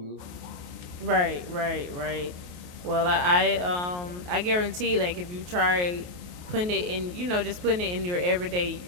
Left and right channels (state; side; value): late; left; 28 ms